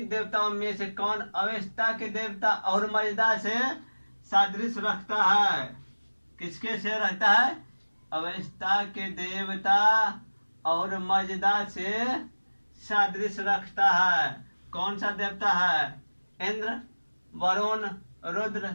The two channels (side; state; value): both; inverted; correlation -1.00